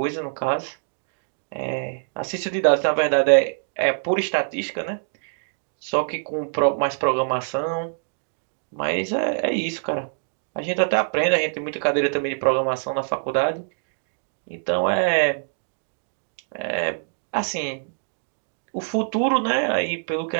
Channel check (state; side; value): silent; left; digital silence